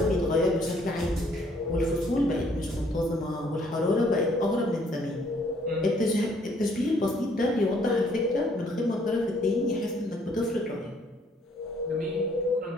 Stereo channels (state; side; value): normal; both; correlation 0.64